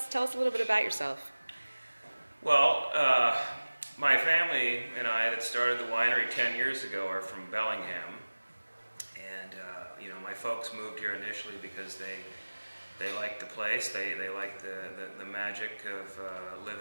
a little bit about yourself. Well, my family and I that started the winery 10 years ago are from Bellingham, and my folks moved here initially because they liked the place, they liked the magic of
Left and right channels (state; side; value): inverted; both; correlation -1.00